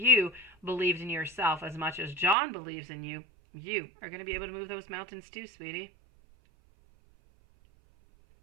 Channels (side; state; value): left; drops out; at 2.4 s